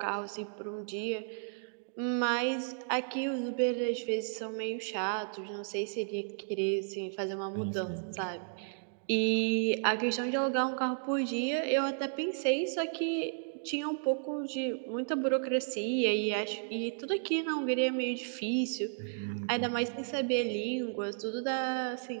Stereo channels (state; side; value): silent; left; digital silence